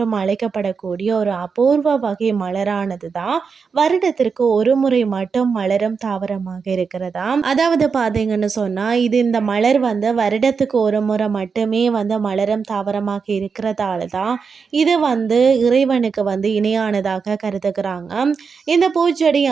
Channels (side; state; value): left; quieter; 5.5 dB